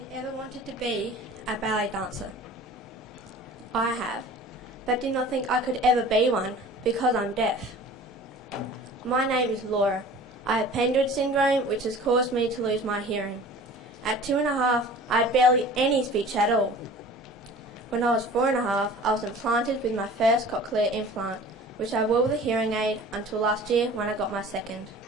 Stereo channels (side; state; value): both; normal; correlation 0.43